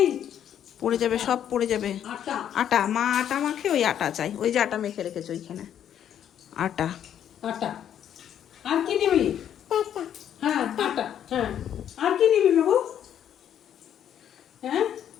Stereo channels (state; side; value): quieter; right; 9.8 dB